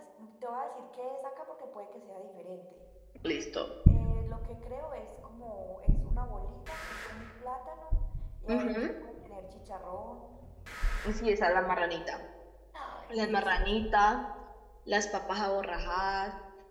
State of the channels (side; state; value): both; identical; correlation 1.00